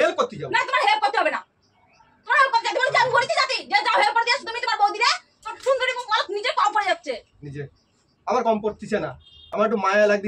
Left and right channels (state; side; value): identical; both; correlation 1.00